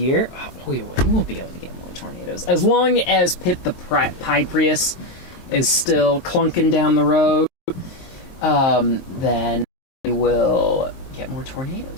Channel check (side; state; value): right; late; 23 ms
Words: Oh, we will be able to get more tornadoes. As long as Pip the Pie Prius is still clunking down the road, then we will get more